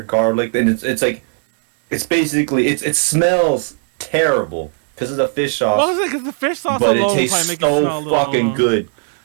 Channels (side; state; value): left; silent; digital silence